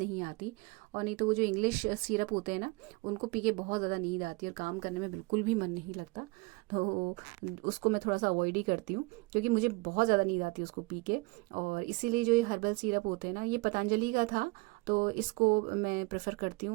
आती। और नहीं तो वो जो इंग्लिश सिरप होते हैं ना, उनको पी के बहुत ज़्यादा नींद आती है और काम करने में बिल्कुल भी मन नहीं लगता। तो उसको मैं थोड़ा सा अवॉइड ही करती हूँ, क्योंकि मुझे बहुत ज़्यादा नींद आती है उसको पी के। और इसीलिए जो ये हर्बल सिरप होते हैं ना, ये पतंजलि का था, तो इसको मैं प्रेफर करती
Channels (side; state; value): left; quieter; 25.8 dB